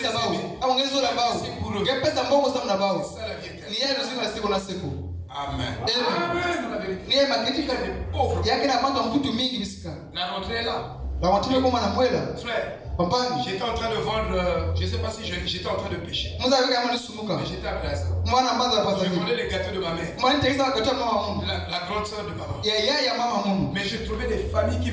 pour eux. C'est ça la vie éternelle. Amen. La rentrée est là. Frère, j'étais en train de vendre, je ne sais pas si j'étais en train de pécher. Mais j'étais à Plaza. Je vendais les gâteaux de ma mère. La grande soeur de maman. Mais je trouvais des familles qui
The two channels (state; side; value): identical; both; correlation 1.00